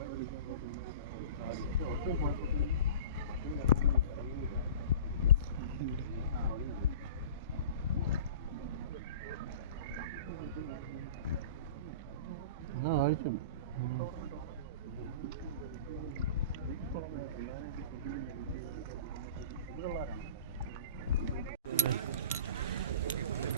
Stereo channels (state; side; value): inverted; both; correlation -0.38